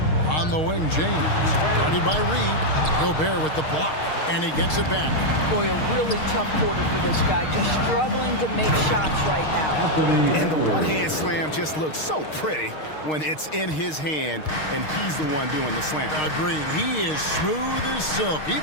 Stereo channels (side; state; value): right; late; 6.5 ms